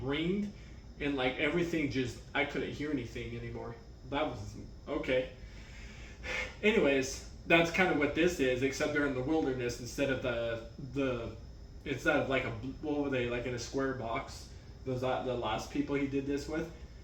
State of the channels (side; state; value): both; identical; correlation 1.00